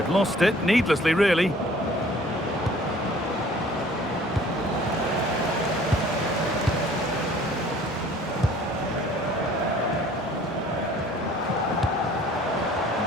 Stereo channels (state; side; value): normal; both; correlation 0.52